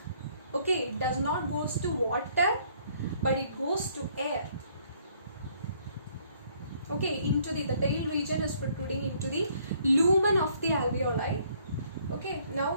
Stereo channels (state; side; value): inverted; both; correlation -0.64